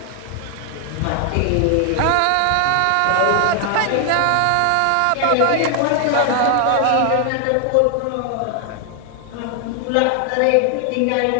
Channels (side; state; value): both; different; correlation 0.00